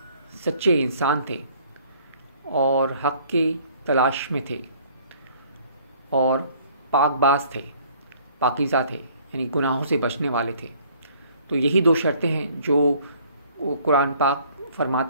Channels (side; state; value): both; inverted; correlation -0.58